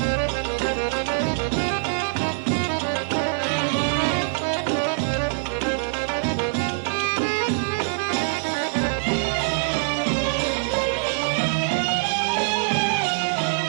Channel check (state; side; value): silent; left; digital silence